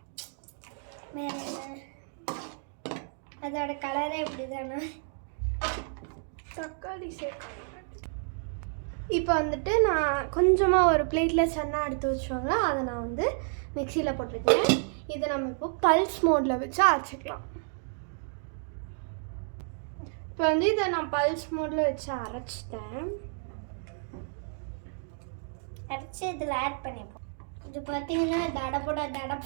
வேற என்ன? அதோட கலரே இப்படி தானே. தக்காளி சேர்க்கணும். இப்போ வந்துட்டு நான் கொஞ்சமாக ஒரு பிளேட்டில் சன்னா எடுத்து வச்சோங்க, அதை நான் வந்து மிக்சியில் போட்டிருக்கேன். இதை நம்ம இப்போ பல்ஸ் மோடில் வச்சு அரைச்சிக்கலாம். இப்போ வந்து இதை நான் பல்ஸ் மோடில் வச்சு அரைச்சிட்டேன். அரைச்சி இதில் ஆட் பண்ணிப்போம். இது பார்த்தீங்கன்னா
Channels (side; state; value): left; silent; 57 dB below the other